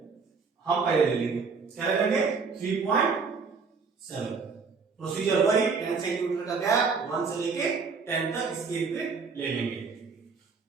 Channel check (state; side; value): quieter; left; 5.0 dB